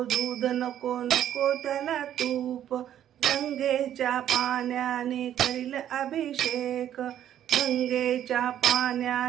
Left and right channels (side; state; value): left; quieter; 10.8 dB